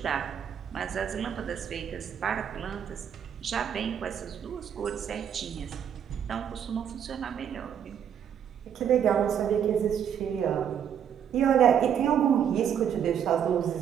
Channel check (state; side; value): quieter; left; 8.7 dB